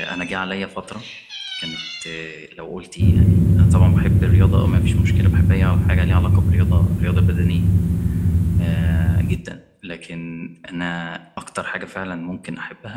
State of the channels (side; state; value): both; identical; correlation 1.00